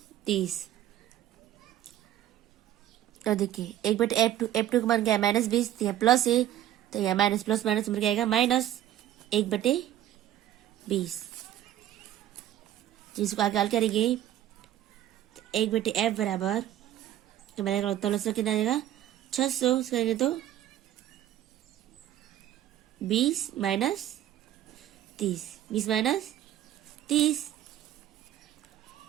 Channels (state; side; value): quieter; left; 12.3 dB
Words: 30। और देखिए 1/F2, F2 का मान क्या है -20, तो यहाँ प्लस है, तो यहाँ माइनस प्लस माइनस क्या आएगा -1/20। जिसको आगे हल करेंगे 1/F बराबर तो मेरा उत्तर कितना आ जाएगा 600 करेंगे तो 20 माइनस 30।